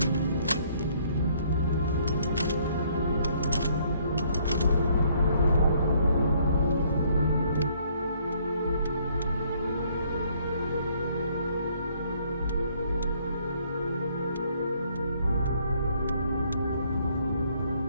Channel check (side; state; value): both; inverted; correlation -0.65